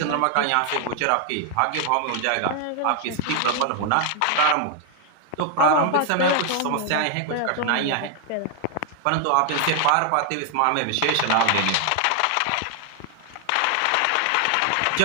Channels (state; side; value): different; both; correlation 0.00